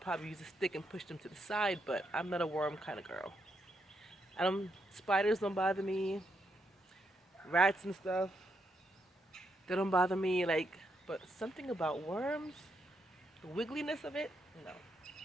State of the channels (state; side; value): normal; both; correlation 0.79